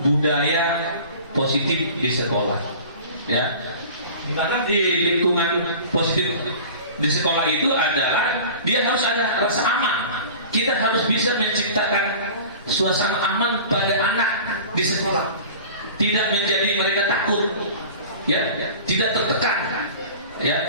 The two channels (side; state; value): both; inverted; correlation -0.40